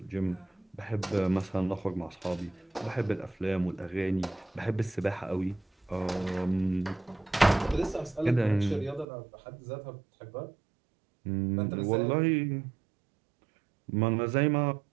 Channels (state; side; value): drops out; left; at 9.1 s